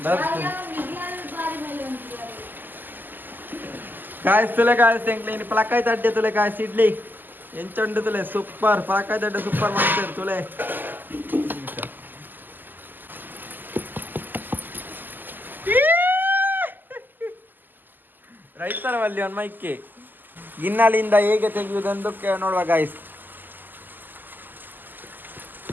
ಕಾಯಿಸ್ತುಲೆ ಕಾಯಿಸ್ತೆ ಎಂಕ್ಲೆ ಇನ್ನು ಪಲಕಾಯಿ ತಡ್ಡೆ ತುಲೆ ಕಾಯಿಸಿ ಇಡ್ಲಿ ಎಂಚಂಡು ತುಲೆ ಸೂಪರ್ ಪಲಕಾಯಿ ತಡ್ಡೆ ಸೂಪರ್ ಮಾಡ್ತಾರೆ ತುಲೆ ರೈತರವಲ್ಲಿ ಒಂದು ಮೈಕೆ ಗಿನ್ನಲಿಂದ ಹೇಗೆ ತೆಗೆಯುವುದೆಂದು ನೋಡುವ ಗಾಯ್ಸ್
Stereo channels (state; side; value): late; left; 0.088 ms